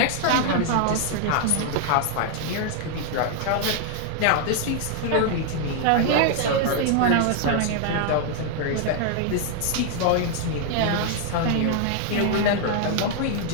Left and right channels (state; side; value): different; both; correlation 0.00